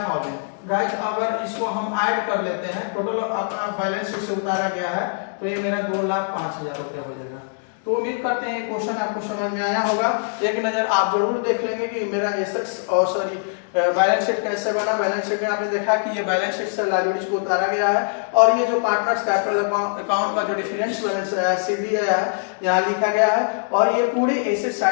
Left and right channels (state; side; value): silent; right; digital silence